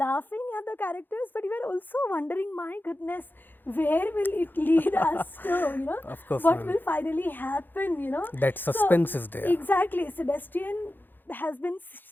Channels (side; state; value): right; late; 0.092 ms